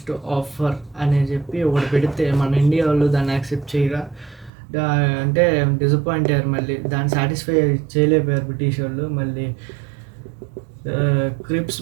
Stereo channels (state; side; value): drops out; left; at 4.5 s